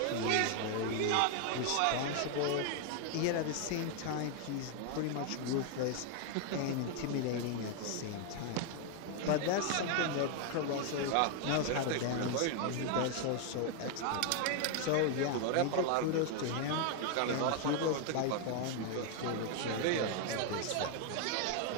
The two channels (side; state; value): both; different; correlation 0.00